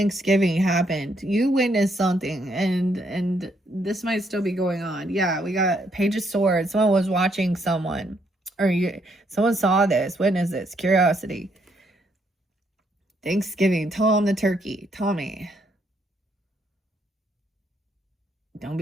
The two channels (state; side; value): normal; both; correlation 0.73